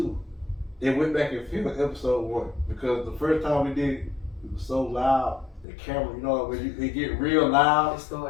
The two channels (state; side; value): drops out; right; at 5.7 s